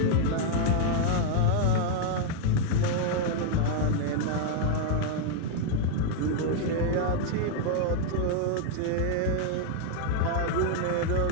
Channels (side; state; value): both; different; correlation 0.00